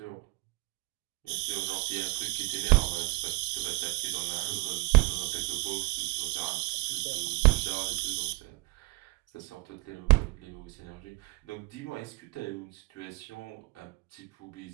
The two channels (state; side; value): quieter; left; 26.0 dB